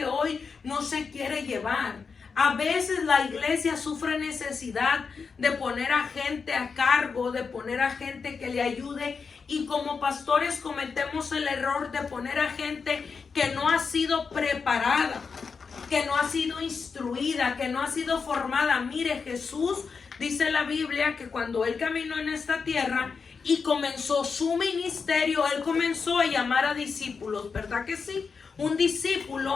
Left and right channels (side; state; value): right; quieter; 5.3 dB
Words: hoy no se quiere llevar. A veces la iglesia sufre necesidad de poner a gente a cargo, de poner a gente que le ayude, y como pastores cometemos el error de poner a gente que no ha sido preparada, que no ha sido instruida, que no ha sido formada. Mire, Jesús, dice la Biblia, que cuando él caminó en esta tierra y comenzó su ministerio, él comenzó a llamar a discípulos, ¿verdad que sí? Un